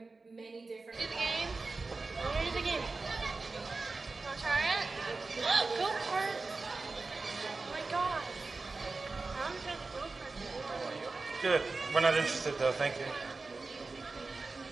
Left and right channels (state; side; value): quieter; left; 3.8 dB